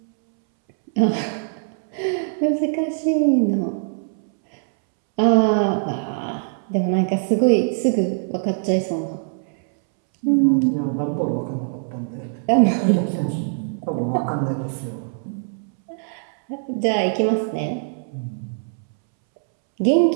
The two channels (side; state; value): left; silent; 64 dB below the other